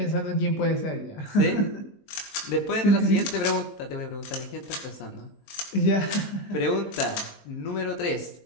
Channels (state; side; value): late; right; 19 ms